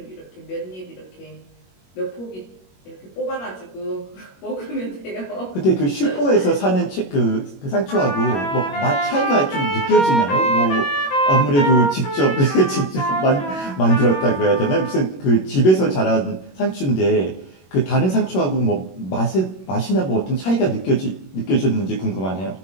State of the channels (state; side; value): late; right; 21 ms